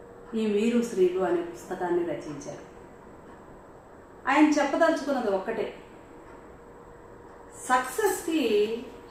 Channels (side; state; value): both; identical; correlation 1.00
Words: ఈ మీరు శ్రీలు అనే పుస్తకాన్ని రచించారు. ఆయన చెప్పదలుచుకున్నది ఒక్కటే, సక్సెస్కి